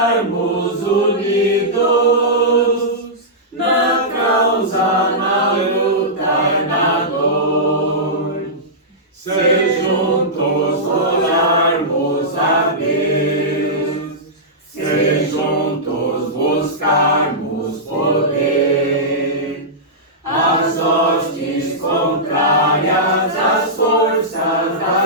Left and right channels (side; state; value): both; normal; correlation -0.14